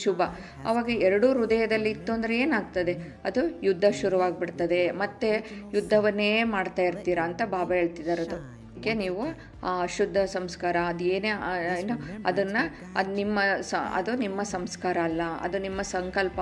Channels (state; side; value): identical; both; correlation 1.00